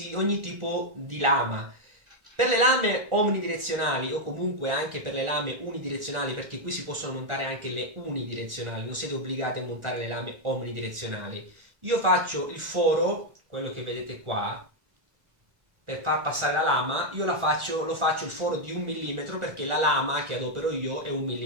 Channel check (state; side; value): late; left; 1.4 ms